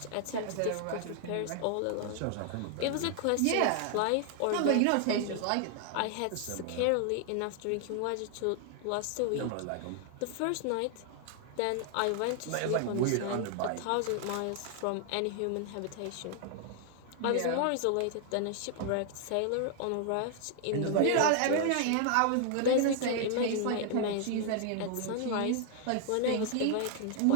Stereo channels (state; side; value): different; both; correlation 0.00